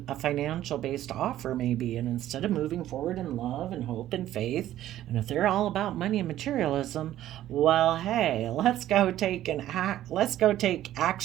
a financial based offer, maybe, and instead of moving forward in love and hope and faith, and if they're all about money and materialism, well, hey, let's go take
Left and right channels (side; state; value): left; quieter; 13.1 dB